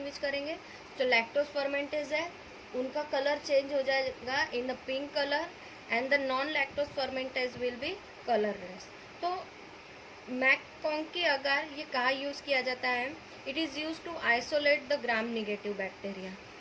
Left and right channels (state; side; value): identical; both; correlation 1.00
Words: करेंगे? जो लैक्टोज फर्मेंटेज है उनका कलर चेंज हो जाएगा in the pink colour and the non lactose fermenters will be colourless. तो मैककॉन्की अगार ये कहाँ यूज़ किया जाता है? It is use to isolate the gram negative bacteria.